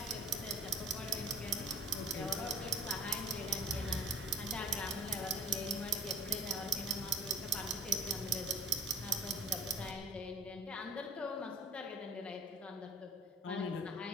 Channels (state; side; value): normal; both; correlation 0.48